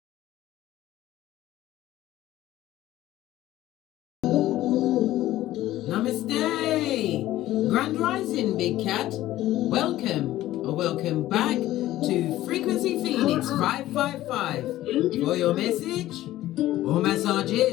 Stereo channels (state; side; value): quieter; right; 14.9 dB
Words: Namaste! Grand Rising, Big Cat. Welcome back to Frequency Phoenix 555 for your message or